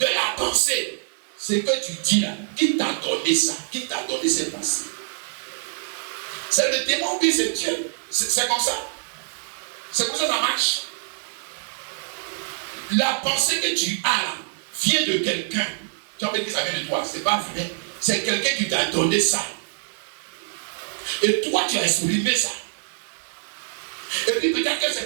la pensée. Ce que tu dis là, qui t'a donné ça? Qui t'a donné cette pensée? C'est le démon qui c'est Dieu. C'est comme ça. C'est comme ça que ça marche. La pensée que tu as là vient de quelqu'un. Tu as envie de dire que ça vient de toi. C'est pas vrai. C'est quelqu'un qui t'a donné ça. Et toi, tu as exprimé ça. Et puis peut-être que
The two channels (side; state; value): left; silent; 62 dB below the other